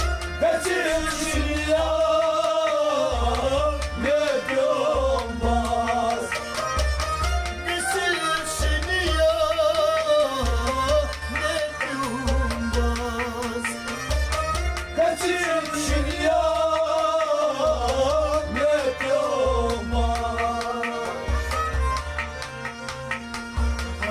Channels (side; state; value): both; identical; correlation 1.00